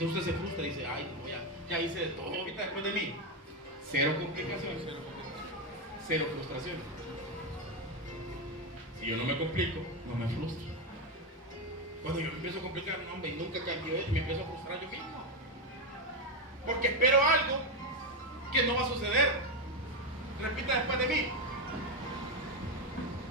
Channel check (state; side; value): normal; both; correlation 0.09